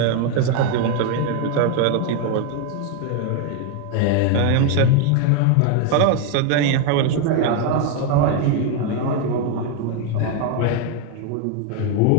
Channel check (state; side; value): different; both; correlation 0.01